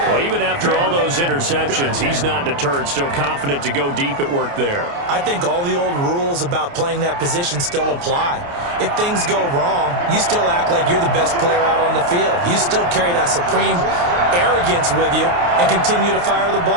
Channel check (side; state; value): left; late; 29 ms